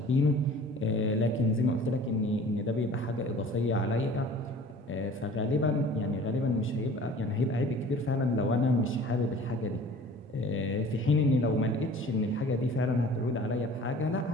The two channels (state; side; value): normal; both; correlation 0.46